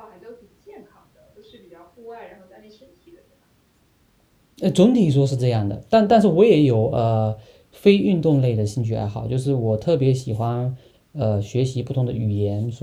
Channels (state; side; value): identical; both; correlation 1.00